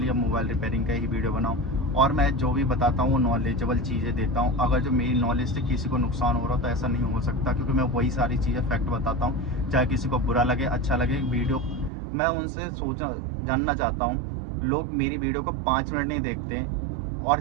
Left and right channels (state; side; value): drops out; left; at 11.9 s